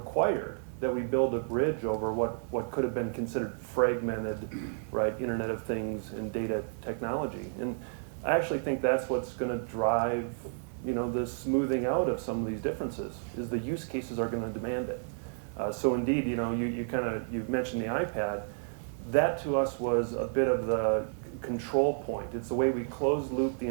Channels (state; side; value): silent; left; digital silence